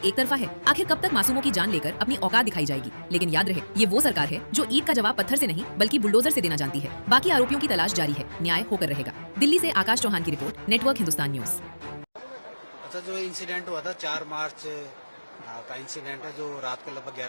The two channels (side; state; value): both; inverted; correlation -1.00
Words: तरफा है? आखिर कब तक मासूमों की जान लेकर अपनी औकात दिखाई जाएगी? लेकिन याद रहे, ये वो सरकार है जो ईद का जवाब पत्थर से नहीं बल्कि बुलडोजर से देना जानती है। बाकी आरोपियों की तलाश जारी है, न्याय होकर रहेगा। दिल्ली से आकाश चौहान की रिपोर्ट, नेटवर्क हिंदुस्तान न्यूज। अच्छा, जो इंसिडेंट हुआ था 4 मार्च का इंसिडेंट है, जो रात को लगभग